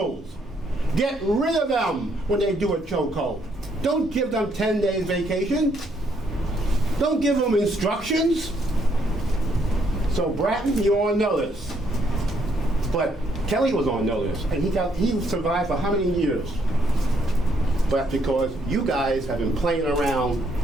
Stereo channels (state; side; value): normal; both; correlation 0.71